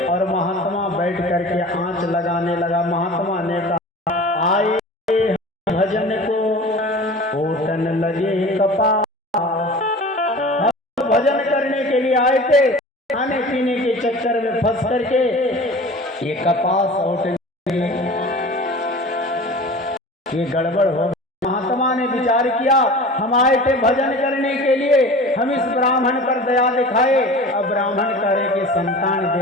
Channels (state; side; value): normal; both; correlation 0.39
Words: और महात्मा बैठ करके आंच लगाने लगा। महात्मा ने कहा आए भजन को होटन लगे कपास। हम भजन करने के लिए आए थे, खाने पीने के चक्कर में फंस करके ये कपास होटन, ये गड़बड़ हो। महात्मा ने विचार किया हम आए थे भजन करने के लिए, हम इस ब्राह्मण पर दया दिखाए, अब ब्राह्मण करे कि संतान